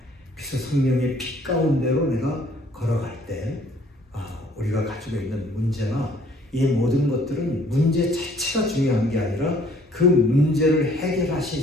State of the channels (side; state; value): both; normal; correlation 0.59